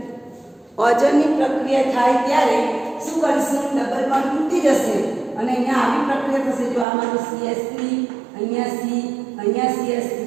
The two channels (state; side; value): drops out; left; at 6.9 s